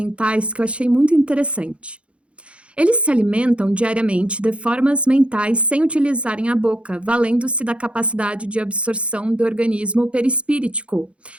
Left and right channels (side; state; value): left; late; 0.060 ms